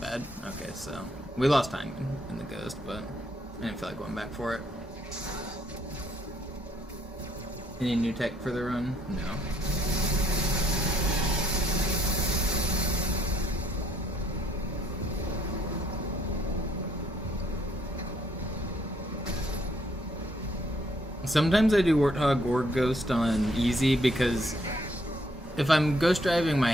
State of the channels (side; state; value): both; normal; correlation 0.69